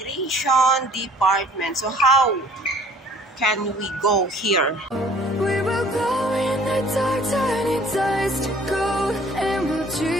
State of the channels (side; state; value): both; normal; correlation 0.54